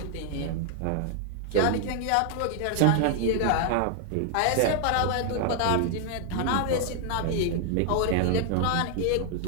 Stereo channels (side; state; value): both; different; correlation 0.00